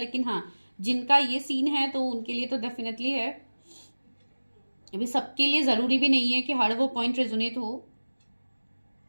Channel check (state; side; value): inverted; both; correlation -1.00